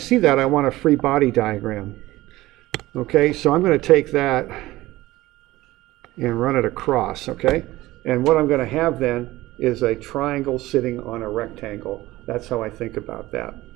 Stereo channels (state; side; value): quieter; left; 17.7 dB